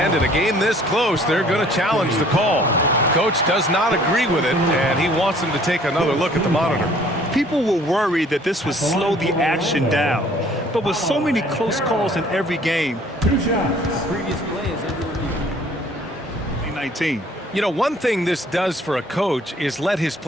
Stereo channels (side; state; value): both; normal; correlation 0.56